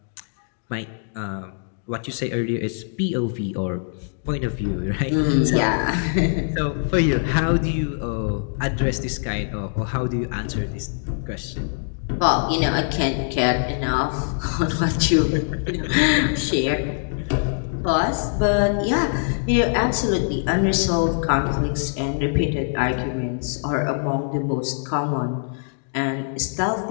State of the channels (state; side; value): silent; right; digital silence